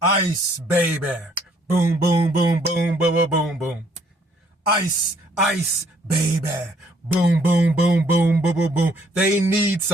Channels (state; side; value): normal; both; correlation 0.65